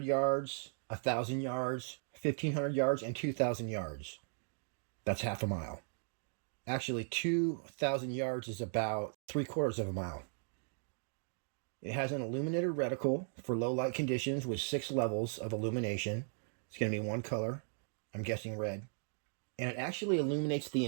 yards, 1,000 yards, 1,500 yards, and 2,000 yards. That's half a mile. Actually, 2,000 yards is about 3/4 of a mile. It has an illuminated reticle for low light conditions with 6 levels of illumination. It's going to be one color, I'm guessing red. And it actually illuminates the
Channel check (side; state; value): left; silent; digital silence